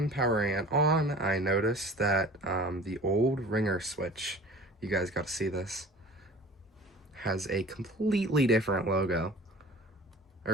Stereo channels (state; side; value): normal; both; correlation 0.43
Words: powering it on, I noticed that the old ringer switch, you guys got to see this, has a completely different logo,